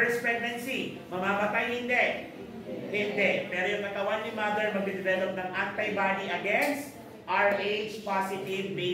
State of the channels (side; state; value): both; identical; correlation 1.00